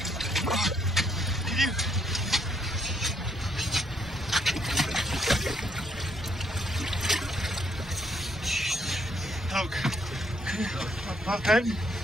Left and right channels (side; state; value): both; normal; correlation 0.71